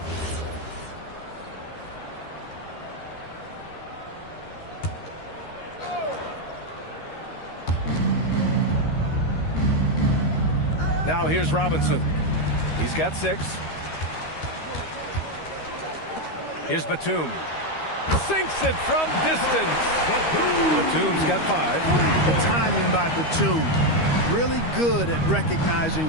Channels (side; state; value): right; late; 13 ms